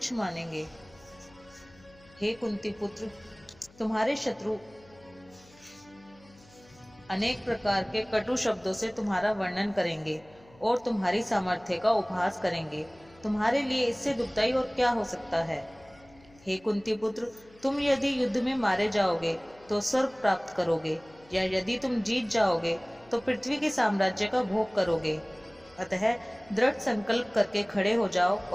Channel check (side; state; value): left; noise; hum, 27 dB below the sound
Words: मानेंगे। हे कुंती पुत्र, तुम्हारे शत्रु अनेक प्रकार के कटु शब्दों से तुम्हारा वर्णन करेंगे और तुम्हारी सामर्थ्य का उपहास करेंगे। तुम्हारे लिए इससे दुखदाई और क्या हो सकता है। हे कुंती पुत्र, तुम यदि युद्ध में मारे जाओगे तो स्वर्ग प्राप्त करोगे, या यदि तुम जीत जाओगे तो पृथ्वी के साम्राज्य का भोग करोगे। अतः दृढ़ संकल्प करके खड़े हो जाओ